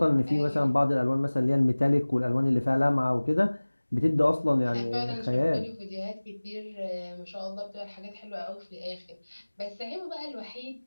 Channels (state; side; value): inverted; both; correlation -1.00